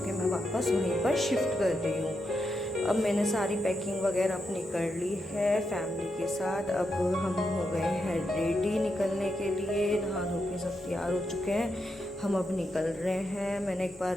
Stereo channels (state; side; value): normal; both; correlation 0.84